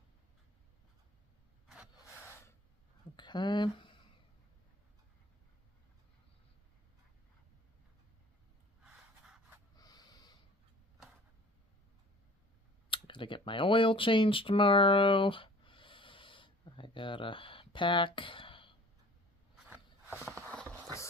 Okay. Gotta get my oil changed tomorrow. I gotta pack. The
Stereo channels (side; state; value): both; normal; correlation 0.48